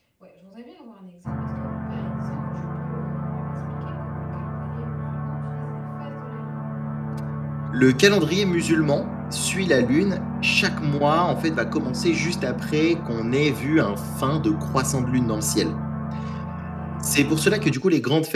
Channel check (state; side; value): identical; both; correlation 1.00